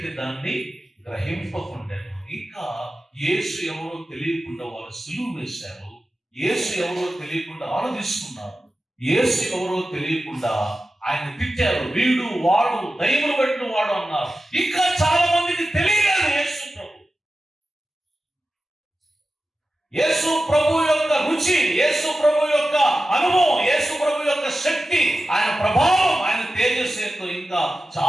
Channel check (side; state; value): both; normal; correlation 0.94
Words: దాన్ని గ్రహింపకుండాను. ఇంకా యేసు ఎవరో తెలియకుండా వారు సిలువ వేశారు. యేసు ఎవరో తెలియకుండా ఆరాధిస్తున్నారు. యేసు ఎవరో తెలియకుండా ఆయన తిట్టారు. వీడు వాడు దయ్యములు పట్టిన వాడు అన్నారు. ఇంకా చాలా మందికి తెలియలేదు యేసు ప్రభు యొక్క రుచి, యేసు ప్రభు యొక్క అనుభవం, యేసు ప్రభు యొక్క శక్తి, ఆయన ప్రభావం, ఆయన తేజస్సుతో ఇంకా